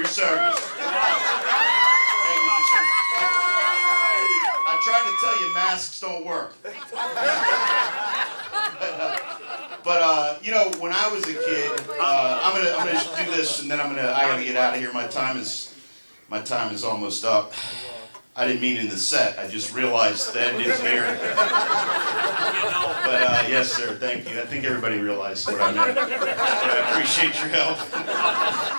service. Thank you for service. I tried to tell you masks don't work. But you know, when I was a kid, I'm gonna do this, and then I gotta get out of here. My time is almost up. I didn't mean in the set. I just realized the end is here. But yes, sir. Thank you. I think everybody realized what I meant. But I appreciate your help.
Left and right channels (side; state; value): both; inverted; correlation -1.00